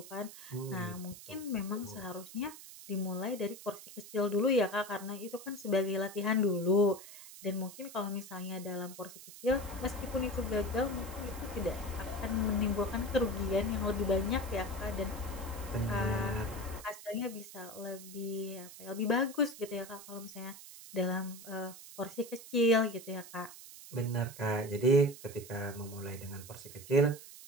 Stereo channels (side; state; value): right; noise; hiss, 15 dB below the sound